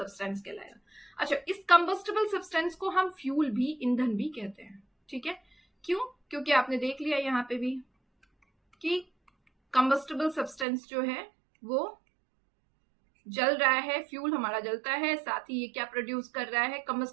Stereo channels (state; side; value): drops out; left; at 10.7 s